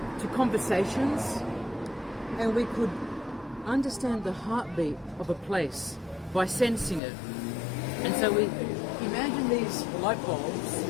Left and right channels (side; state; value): right; drops out; at 7.0 s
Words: to conversations, and we could understand the heartbeat of a place by sensing it. And so we imagine these light bulbs